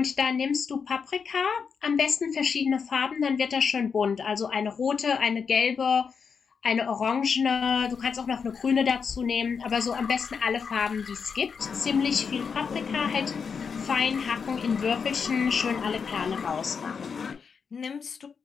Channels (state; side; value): quieter; right; 6.0 dB